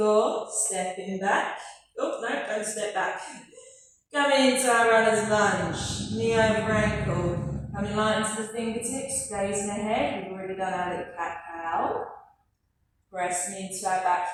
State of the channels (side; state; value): both; identical; correlation 1.00